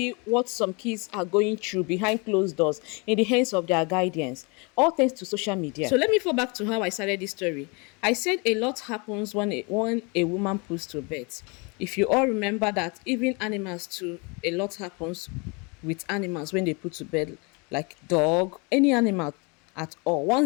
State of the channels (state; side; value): quieter; right; 30.5 dB